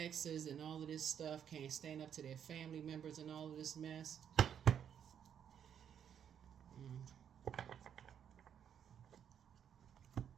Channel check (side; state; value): left; quieter; 8.6 dB